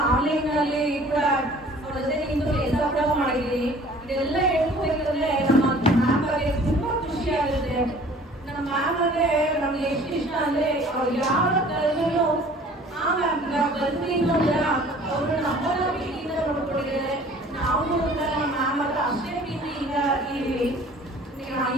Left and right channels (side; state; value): both; normal; correlation 0.50